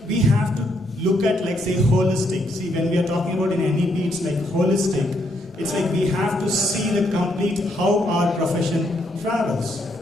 we have to look at, like, say, holistic. See, when we are talking about in NEP, it's like holistic. It's like we have to see the complete how our profession travels.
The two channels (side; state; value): both; normal; correlation 0.75